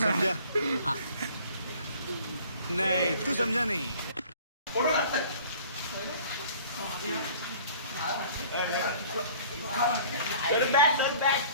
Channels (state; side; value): inverted; both; correlation -0.49